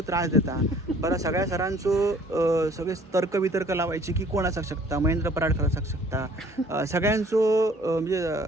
त्रास देता. बरं सगळ्या सरांचो सगळे तर्क लावायचे की कोण असाक शकता, महेंद्र पराडकर असाक शकता. सगळ्यांचो म्हणजे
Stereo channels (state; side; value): normal; both; correlation 0.55